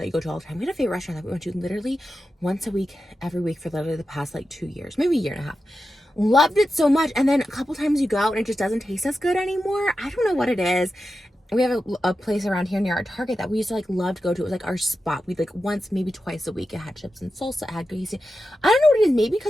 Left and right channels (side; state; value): both; normal; correlation 0.91